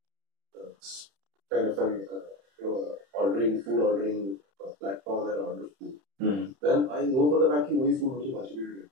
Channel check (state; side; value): late; left; 31 ms